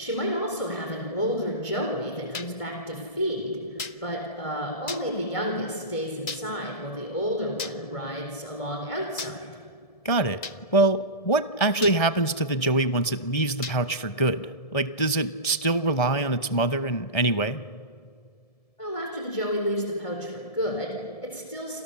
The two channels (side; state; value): right; late; 1.7 ms